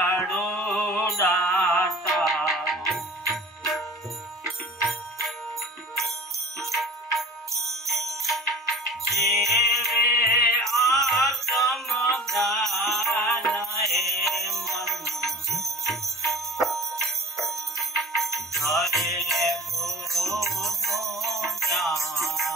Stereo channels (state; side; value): normal; both; correlation 0.41